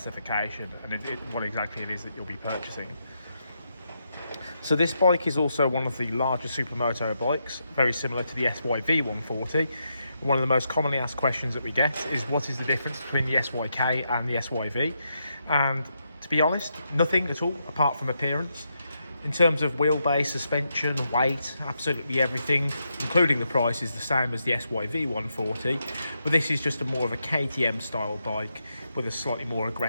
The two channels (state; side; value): inverted; both; correlation -0.82